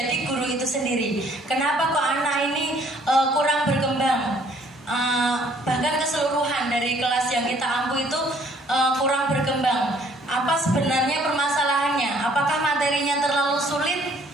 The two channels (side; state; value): both; normal; correlation 0.61